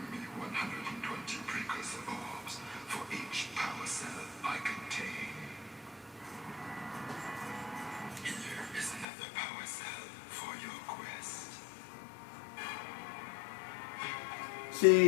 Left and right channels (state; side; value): drops out; right; at 9.1 s